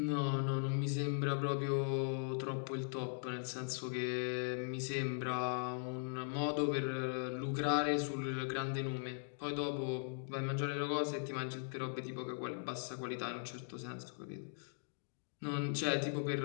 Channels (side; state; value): right; silent; digital silence